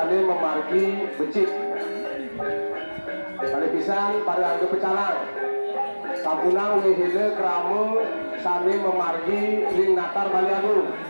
memargi becik. Kali pisan pada angge pecalang, sabunang wihile keramu sami memargi ring natar Bali Agung.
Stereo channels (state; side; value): inverted; both; correlation -1.00